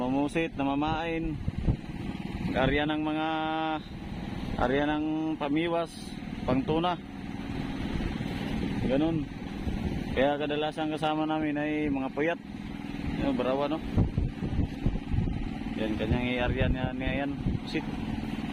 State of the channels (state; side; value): identical; both; correlation 1.00